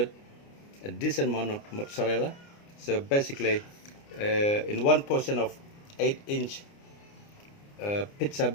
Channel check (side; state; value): right; late; 29 ms